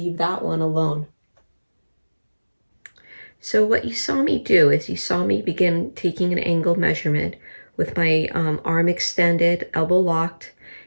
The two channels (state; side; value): inverted; both; correlation -1.00